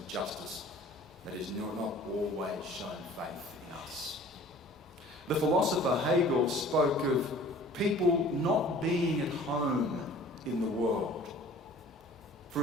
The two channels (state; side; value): normal; both; correlation 0.48